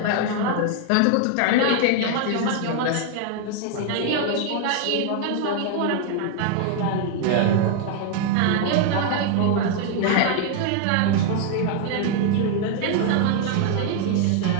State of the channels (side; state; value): both; different; correlation 0.00